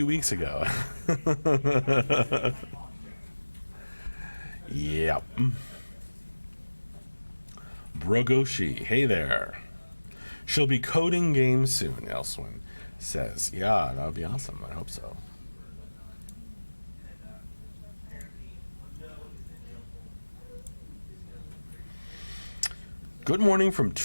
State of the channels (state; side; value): inverted; both; correlation -1.00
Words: weeks ago. Yep. Brogoshi, hey there. She'll be coding games soon, Elswin says. Yeah, that would be awesome. I hope so. Good morning from